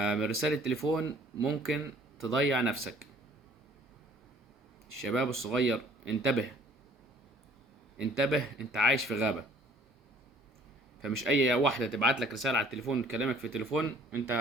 رسالة تليفون ممكن تضيع نفسك. الشباب الصغير انتبه، انتبه، انت عايش في غابة. فمش اي واحدة تبعت لك رسالة على التليفون تكلمك في التليفون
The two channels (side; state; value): both; normal; correlation 0.55